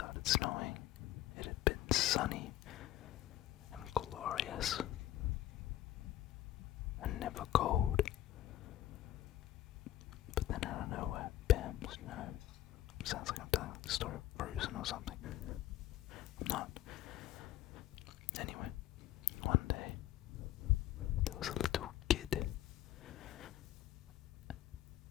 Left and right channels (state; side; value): quieter; right; 13.7 dB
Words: snowing, it had been sunny and glorious and never cold. But then out of nowhere, bam, snow. Sounds like I'm telling the story of Frozen or something. I'm not. Anyway, one day, there was a little kid.